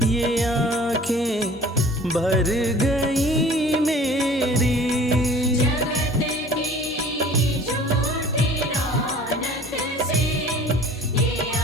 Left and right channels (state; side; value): normal; both; correlation 0.48